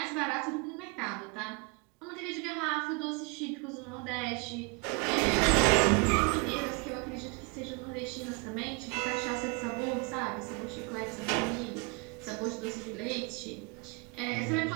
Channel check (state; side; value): quieter; left; 29.9 dB